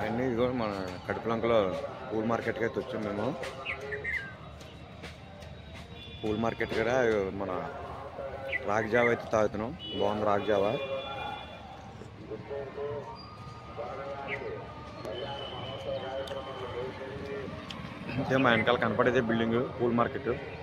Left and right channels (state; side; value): identical; both; correlation 1.00